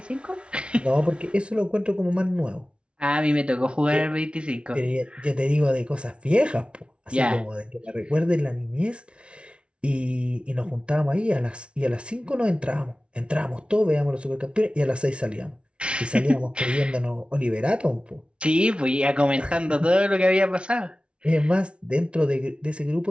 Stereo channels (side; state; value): left; late; 0.058 ms